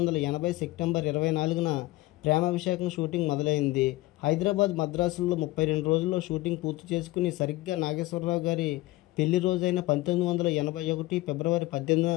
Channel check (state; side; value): quieter; right; 18.9 dB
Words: సెప్టెంబర్ 24న ప్రేమాభిషేకం షూటింగ్ మొదలైంది. హైదరాబాద్, మద్రాసుల్లో 32 రోజుల్లో షూటింగ్ పూర్తి చేసుకుని సరిగ్గా నాగేశ్వరరావు గారి పెళ్లి రోజైన 1981 ఫిబ్రవరి 18న